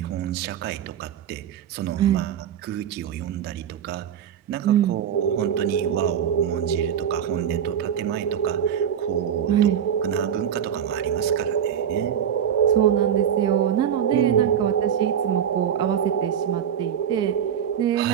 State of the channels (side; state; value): left; quieter; 8.9 dB